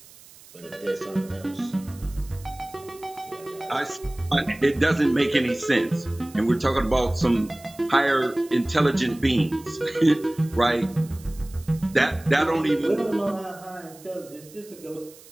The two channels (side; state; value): right; noise; hiss, 22 dB below the sound